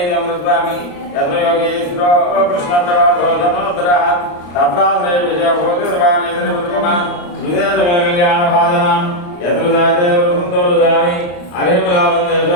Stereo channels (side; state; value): right; late; 34 ms